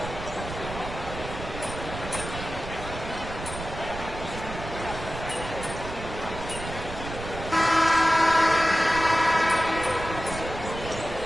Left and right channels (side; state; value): right; noise; rumble, 9 dB below the sound